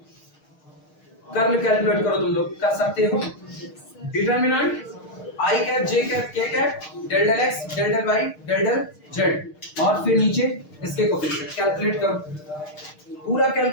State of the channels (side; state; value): right; late; 6.5 ms